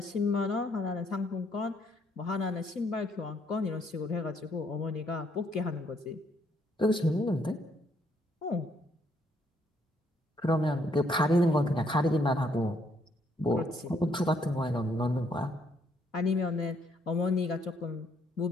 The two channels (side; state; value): both; normal; correlation 0.70